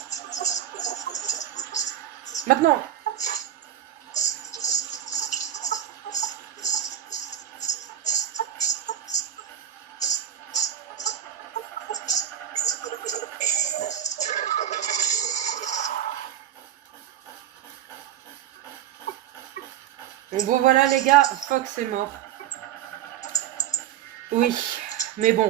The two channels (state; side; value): quieter; left; 10.8 dB